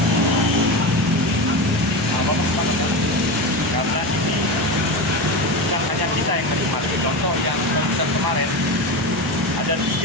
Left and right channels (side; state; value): both; normal; correlation 0.21